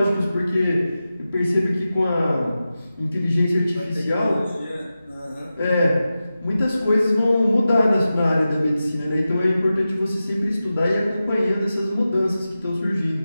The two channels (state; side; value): inverted; both; correlation -0.93